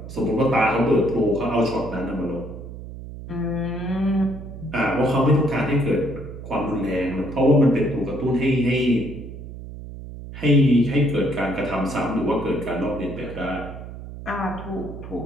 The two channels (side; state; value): right; noise; hum, 12 dB below the sound